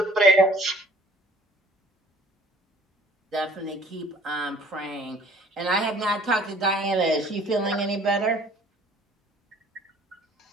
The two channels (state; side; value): normal; both; correlation 0.54